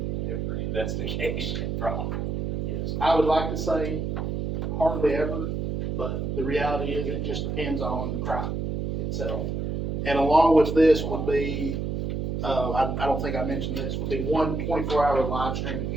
Every investigation from. Yes. I would like to say hardly ever, but the reality is it just depends on crime itself. And along with this would be, I don't think I mentioned this, would be one 24-hour live streaming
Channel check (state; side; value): noise; right; hum, 1 dB below the sound